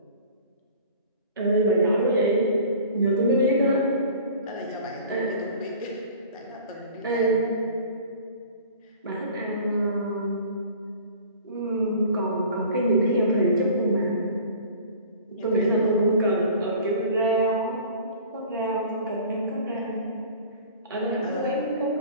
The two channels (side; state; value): both; inverted; correlation -0.44